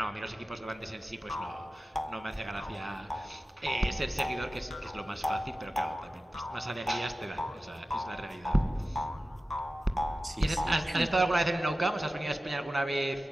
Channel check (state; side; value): normal; both; correlation 0.95